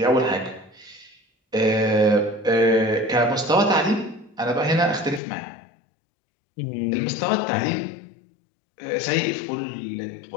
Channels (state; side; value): drops out; right; at 5.2 s